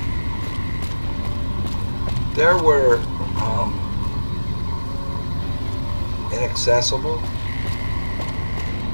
There were inaccessible.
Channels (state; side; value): inverted; both; correlation -1.00